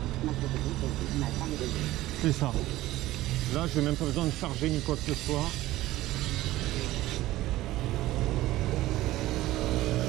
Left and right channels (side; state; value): left; quieter; 16.4 dB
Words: C'est ça. Là, je n'ai même pas besoin de charger ni quoi que ce soit.